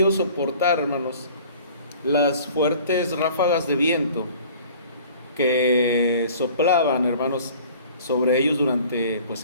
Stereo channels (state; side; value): inverted; both; correlation -0.48